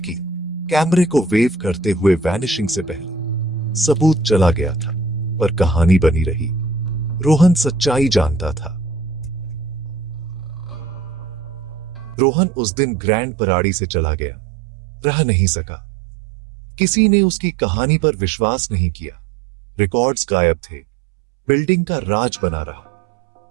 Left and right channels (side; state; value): left; drops out; at 12.2 s